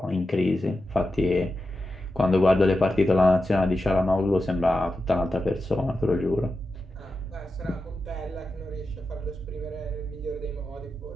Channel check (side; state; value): both; normal; correlation 0.90